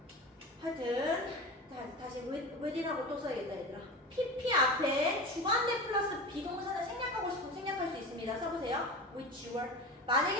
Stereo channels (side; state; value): both; normal; correlation 0.29